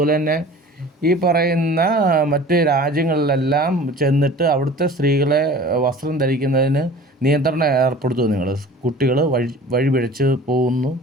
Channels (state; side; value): normal; both; correlation 0.43